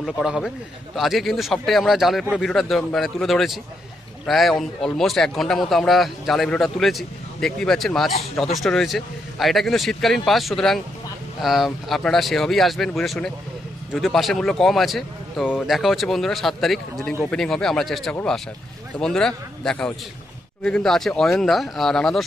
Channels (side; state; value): both; normal; correlation 0.79